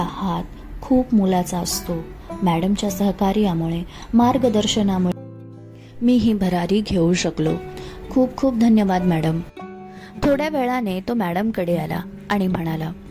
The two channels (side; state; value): both; identical; correlation 1.00